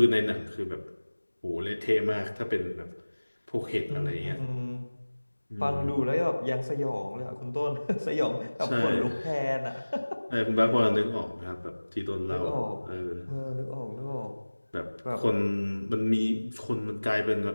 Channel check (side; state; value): both; inverted; correlation -1.00